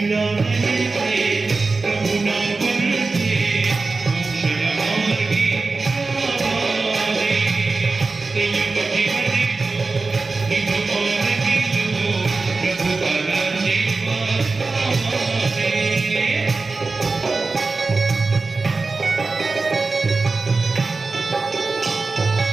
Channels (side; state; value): left; quieter; 3.9 dB